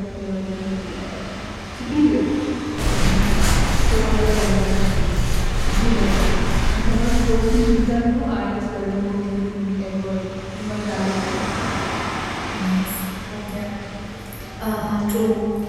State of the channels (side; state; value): both; identical; correlation 1.00